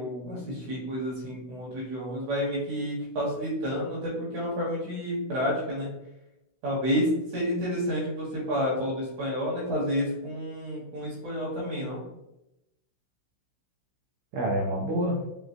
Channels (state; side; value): late; left; 16 ms